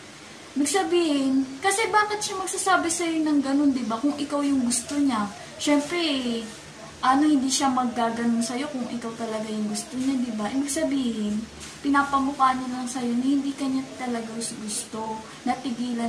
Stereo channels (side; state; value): both; identical; correlation 1.00